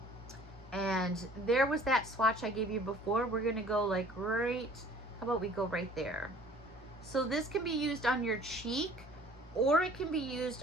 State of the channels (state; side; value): normal; both; correlation 0.51